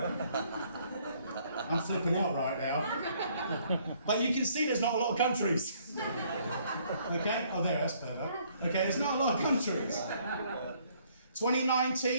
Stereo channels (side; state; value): both; inverted; correlation -0.64